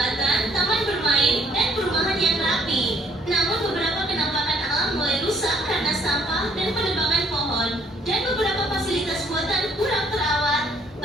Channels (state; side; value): normal; both; correlation 0.64